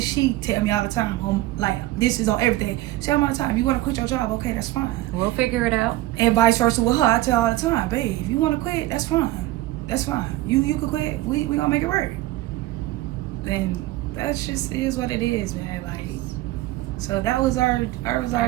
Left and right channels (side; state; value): left; quieter; 17.0 dB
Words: she tell me all the time, like this is on everything. She tell me all the time, if you want to quit your job, okay, that's fine. We'll figure it out. And vice versa with her, I tell her all the time, babe, if you want to quit, that's fine. That's fine. You could quit. We gonna make it work. And that's just is what it is, man. Like, so that was our